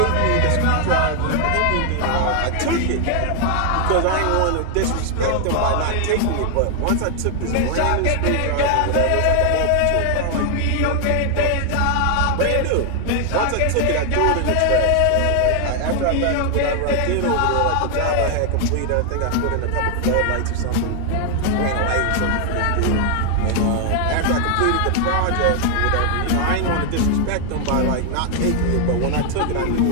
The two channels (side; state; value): both; different; correlation 0.00